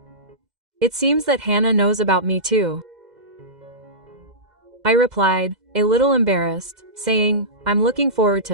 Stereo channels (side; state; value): left; late; 2.1 ms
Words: It seems that Hannah knows about me too. I replied, a little embarrassed, saying, I'm looking forward